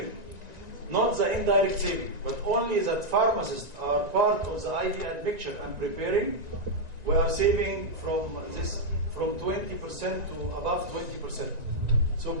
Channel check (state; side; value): late; left; 1.9 ms